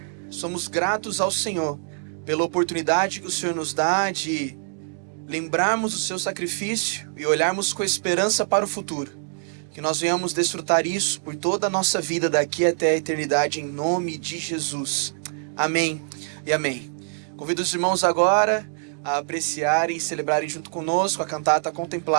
Somos gratos ao Senhor pela oportunidade que o Senhor nos dá de lembrarmos o seu sacrifício e olharmos com esperança para o futuro. Que nós venhamos desfrutar isso por toda a nossa vida daqui até a eternidade, em nome de Jesus. Amém e amém. Convido os irmãos agora a apreciarem e celebrarem junto conosco a cantata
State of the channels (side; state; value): left; silent; digital silence